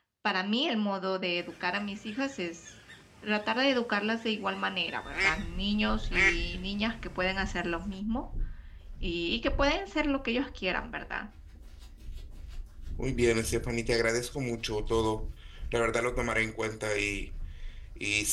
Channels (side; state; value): both; identical; correlation 1.00